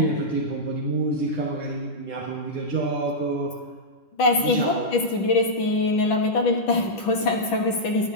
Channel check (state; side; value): late; right; 10 ms